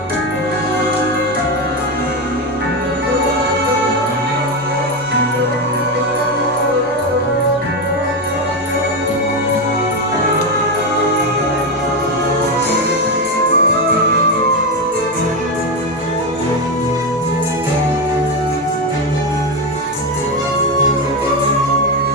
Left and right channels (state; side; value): normal; both; correlation 0.12